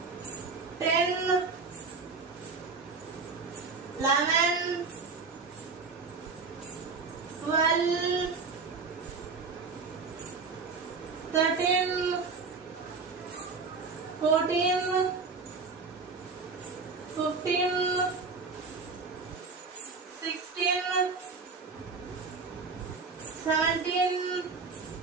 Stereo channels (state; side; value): quieter; left; 4.5 dB